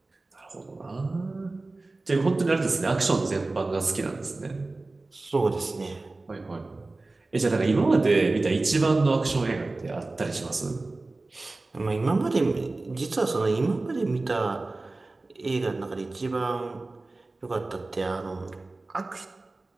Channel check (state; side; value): quieter; left; 3.2 dB